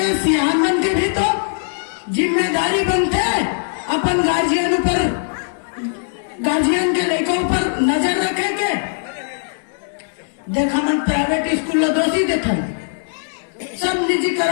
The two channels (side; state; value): right; silent; digital silence